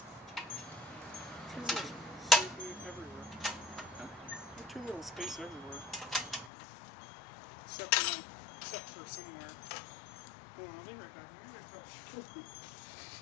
Too little space everywhere. Huh? Too little space everywhere. Except for somewhere. Hold on, I'll be right back. I'm gonna touch.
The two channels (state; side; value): drops out; right; at 6.5 s